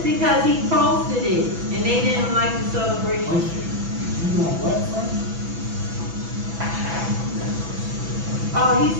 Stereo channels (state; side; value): late; left; 6.0 ms